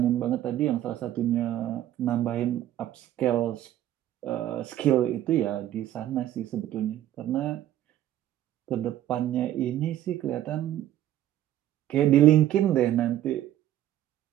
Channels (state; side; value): quieter; left; 12.7 dB